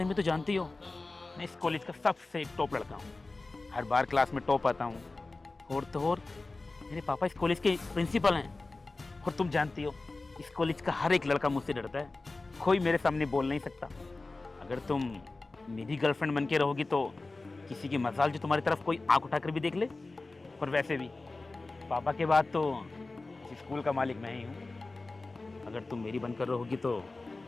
में तो जानती हो, मैं इस कॉलेज का सबसे टॉप लड़का हूँ। हर बार क्लास में टॉप आता हूँ। और तो और मेरे पापा इस कॉलेज के प्रिंसिपल हैं। और तुम जानती हो, इस कॉलेज का हर एक लड़का मुझसे डरता है। कोई मेरे सामने बोल नहीं सकता। अगर तुम मेरी गर्लफ्रेंड बन के रहोगी तो किसी की मजाल जो तुम्हारी तरफ कोई आंख उठाकर भी देख ले। और वैसे भी पापा के बाद तो इस स्कूल का मालिक मैं ही हूँ। अगर तुम मेरी बनकर रहोगी तो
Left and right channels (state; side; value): quieter; right; 3.4 dB